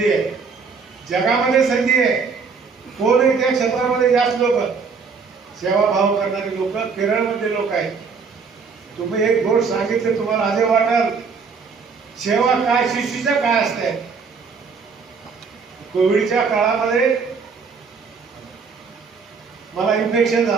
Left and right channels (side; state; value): left; quieter; 5.3 dB